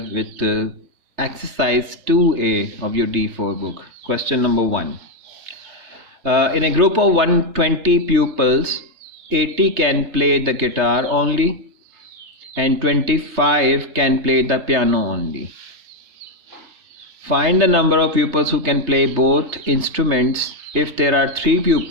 with exercise 2A of your D-4 book. Question number 1. In a group of 120 pupils, 80 can play the guitar only and 25 can play the piano only. Find the number of pupils who can play both instruments if there are 3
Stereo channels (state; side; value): late; left; 3.2 ms